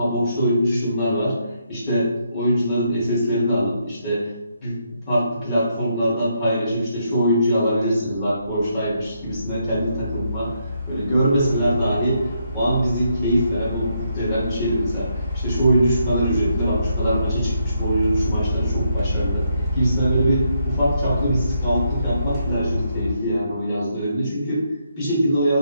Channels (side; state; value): both; inverted; correlation -0.77